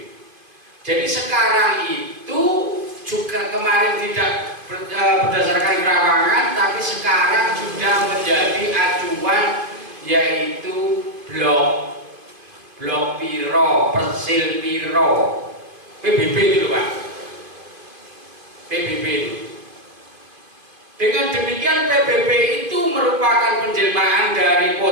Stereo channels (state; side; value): late; left; 2.5 ms